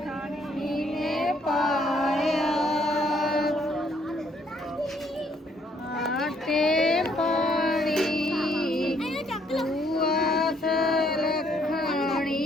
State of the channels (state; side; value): normal; both; correlation 0.67